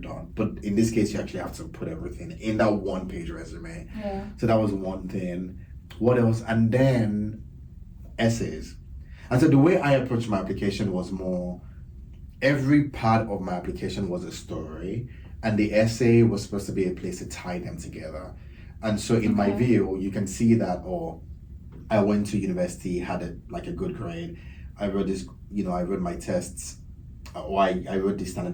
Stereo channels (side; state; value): both; identical; correlation 1.00